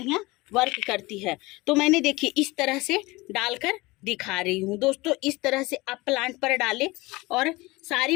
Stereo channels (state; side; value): quieter; right; 22.1 dB